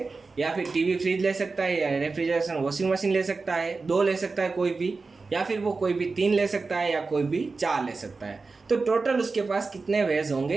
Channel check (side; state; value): left; quieter; 4.1 dB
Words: या फिर टीवी फ्रिज ले सकता है, या रेफ्रिजरेशन वॉशिंग मशीन ले सकता है, 2 ले सकता है कोई भी, या फिर वो कोई भी 3 ले सकता है, या कोई भी 4 ले सकता है। तो टोटल उसके पास कितने वेज